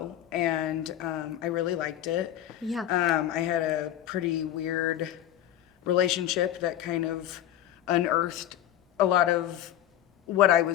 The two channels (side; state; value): right; quieter; 12.1 dB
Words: and I really liked it. Yeah. I had a pretty weird relationship that kind of unearthed a lot of what I